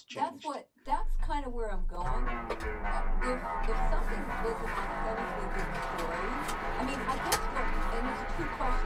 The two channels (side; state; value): both; identical; correlation 1.00